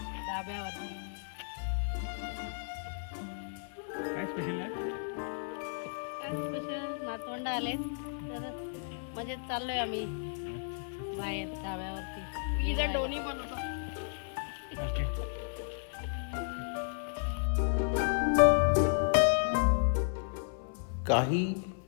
डाब्यावरती. काय स्पेशल आहे? काय स्पेशल, नातवंड आले तर म्हणजे चाललोय आम्ही बाहेर डाब्यावरती. इथं दोन्ही बनवतो. ओके. काही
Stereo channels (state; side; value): silent; right; 55 dB below the other